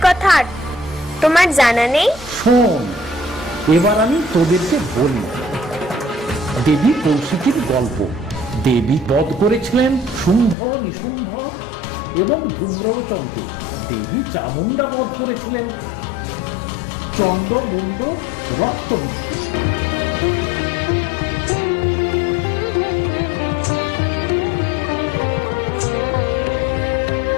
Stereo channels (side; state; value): right; drops out; at 10.6 s